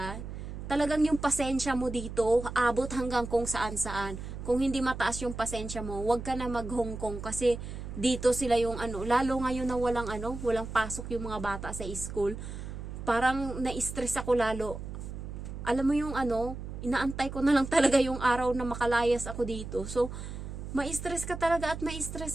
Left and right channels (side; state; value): right; noise; hum, 8 dB below the sound